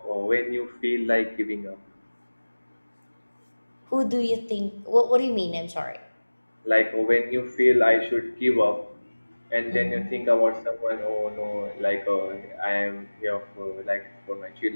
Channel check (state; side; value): inverted; both; correlation -1.00